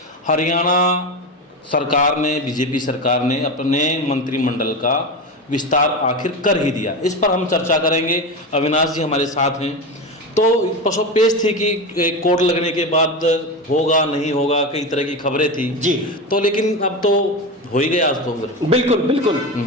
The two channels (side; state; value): both; normal; correlation 0.20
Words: हरियाणा सरकार ने, बीजेपी सरकार ने अपने मंत्रिमंडल का विस्तार आखिर कर ही दिया। इस पर हम चर्चा करेंगे। अविनाश जी हमारे साथ हैं। तो पसोपेश थी कि कोर्ट लगने के बाद होगा नहीं होगा, कई तरह की खबरें थी जी। तो लेकिन अब तो हो ही गया आज तो। बिल्कुल बिल्कुल।